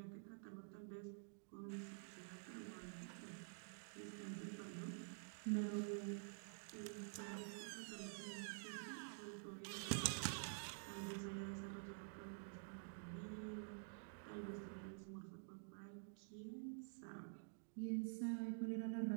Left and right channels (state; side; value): silent; left; digital silence